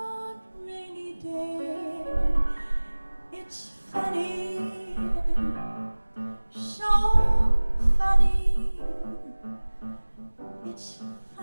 rainy day. It's funny, so funny. It's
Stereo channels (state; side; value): inverted; both; correlation -1.00